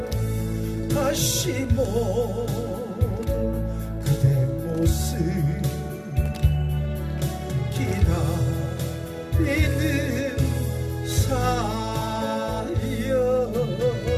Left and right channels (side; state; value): both; identical; correlation 1.00